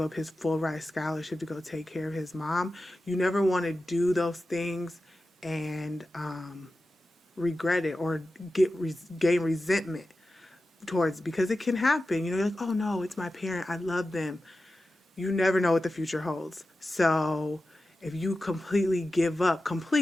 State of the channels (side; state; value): both; normal; correlation 0.93